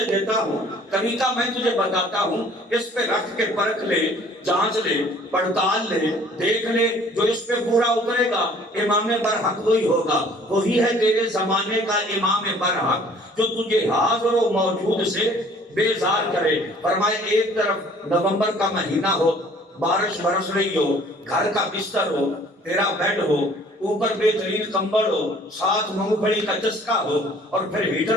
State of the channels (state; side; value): normal; both; correlation 0.54